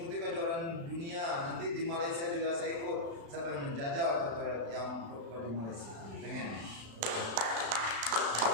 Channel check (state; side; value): late; left; 35 ms